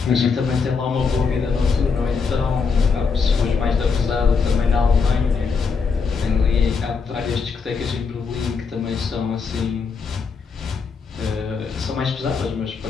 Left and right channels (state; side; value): quieter; right; 5.3 dB